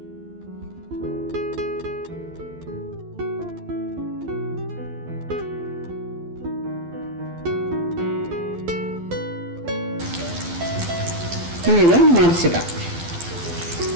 ഇനി ഇത് മറിച്ചിടാം.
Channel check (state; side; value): late; left; 12 ms